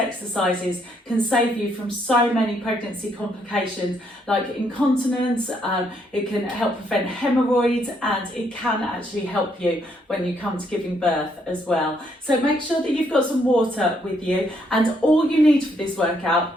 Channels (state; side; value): normal; both; correlation 0.72